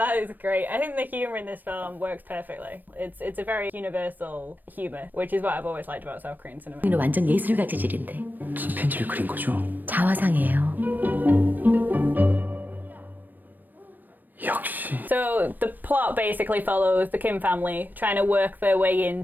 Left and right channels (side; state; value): left; late; 0.089 ms